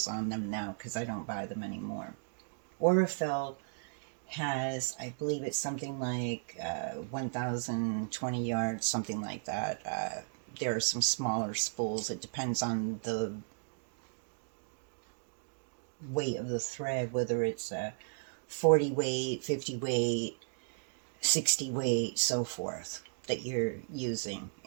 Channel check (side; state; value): left; silent; digital silence